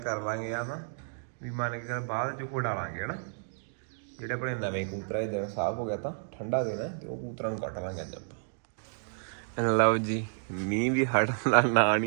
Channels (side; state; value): left; silent; digital silence